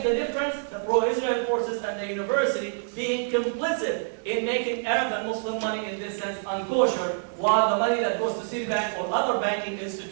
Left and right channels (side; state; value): left; silent; digital silence